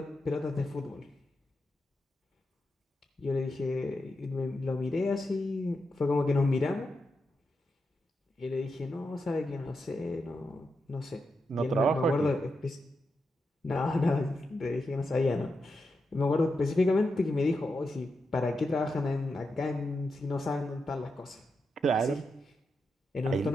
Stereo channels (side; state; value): both; normal; correlation 0.86